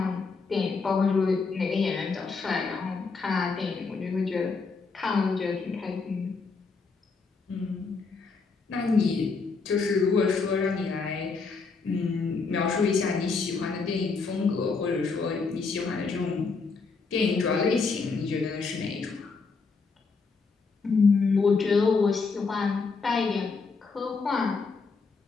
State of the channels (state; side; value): quieter; right; 4.5 dB